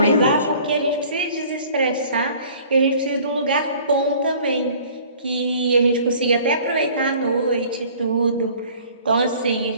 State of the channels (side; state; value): both; inverted; correlation -0.51